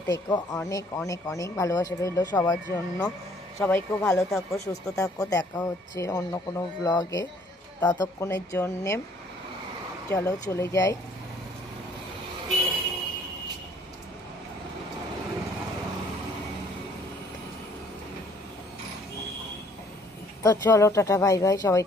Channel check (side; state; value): both; normal; correlation 0.61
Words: থেকো। অনেক অনেক অনেক ভালোবাসা রইলো সবার জন্য। সবাই খুব ভালো থাকো, সুস্থ থাকো। দেখা হচ্ছে অন্য কোনো ব্লগে, ততক্ষণের জন্যে চলো চলে যাই। তো চলো টাটা বাই বাই, সবাই